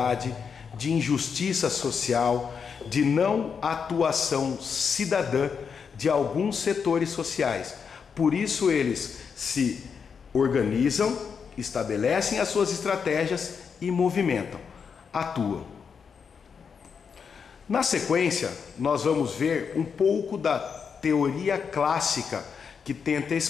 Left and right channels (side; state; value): right; quieter; 6.3 dB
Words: de injustiça social, de não atuação cidadã de alguns setores sociais. Por isso eles se organizam, estabelecem as suas estratégias e movimentam, atuam. Na sequência, nós vamos ver um pouco da teoria clássica que tenta